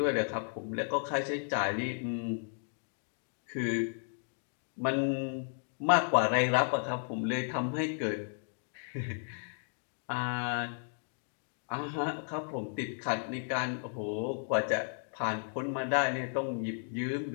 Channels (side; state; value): right; silent; digital silence